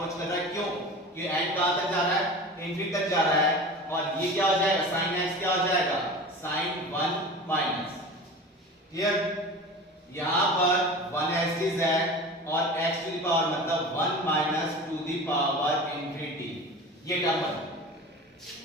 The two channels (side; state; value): both; normal; correlation 0.35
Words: कर रहा है, क्यों, कि एंड कहां तक जा रहा है इंफिनिटी तक जा रहा है, और ये क्या हो जाएगा sin x क्या हो जाएगा sin 1 माइनस, क्लियर, यहां पर 1 एक्सिस है और x टू द पावर मतलब 1 minus two the power infinity, ये टर्म बन,